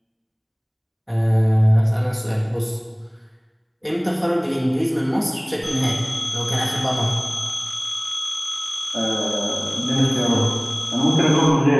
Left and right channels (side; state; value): both; identical; correlation 1.00